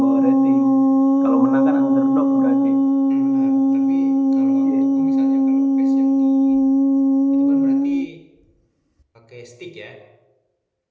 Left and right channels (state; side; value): identical; both; correlation 1.00